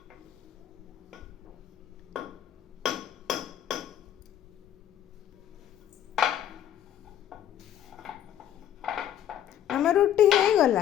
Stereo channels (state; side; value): quieter; right; 10.8 dB